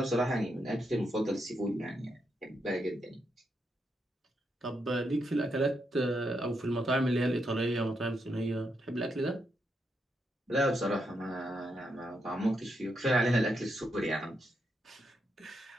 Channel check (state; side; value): normal; both; correlation 0.81